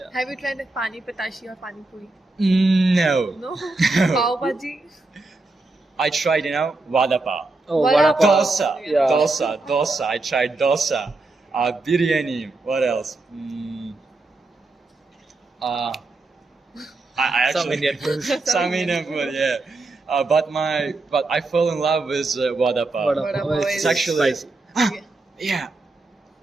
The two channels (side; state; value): left; quieter; 3.2 dB